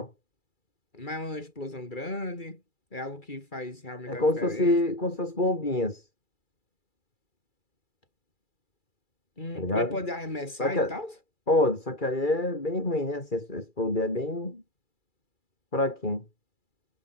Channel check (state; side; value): late; right; 2.3 ms